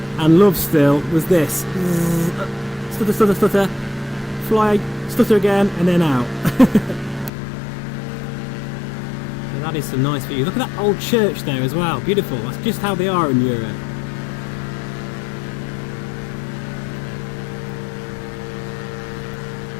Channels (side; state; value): right; drops out; at 7.3 s